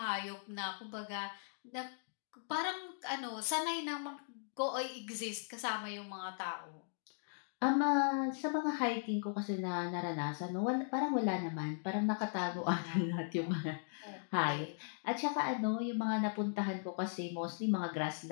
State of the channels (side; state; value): right; silent; digital silence